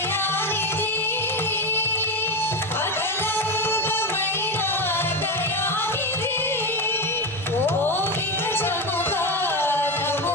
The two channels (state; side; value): normal; both; correlation 0.15